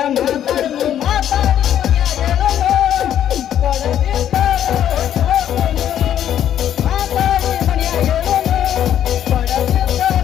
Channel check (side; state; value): right; quieter; 10.5 dB